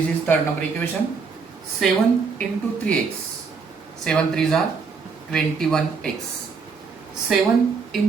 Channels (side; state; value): left; quieter; 5.2 dB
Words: is third number equation. 7 into 3x, 7 3s are 21x. 7